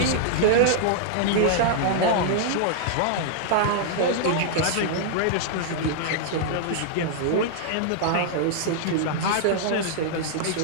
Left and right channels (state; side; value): different; both; correlation -0.01